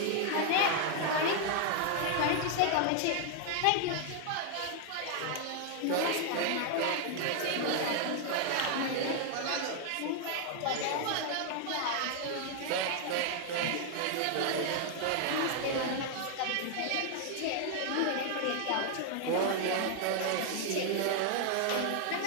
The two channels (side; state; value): both; different; correlation 0.00